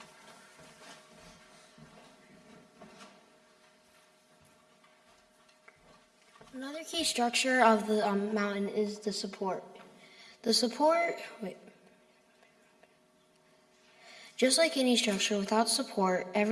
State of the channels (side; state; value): both; identical; correlation 1.00